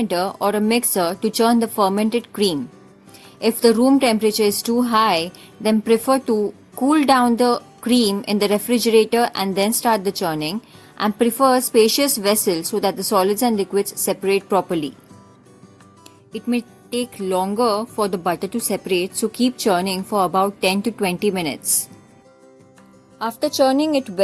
or a mixer to churn the fermented cream. If the room temperature is too high, then prefer to cool down the cream in the refrigerator and then start the churning, and prefer a spacious vessel so that the solids and liquids separate properly. It may take longer for the butter to separate, so keep churning for about 10 to 20 minutes. After churning it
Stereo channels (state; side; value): identical; both; correlation 1.00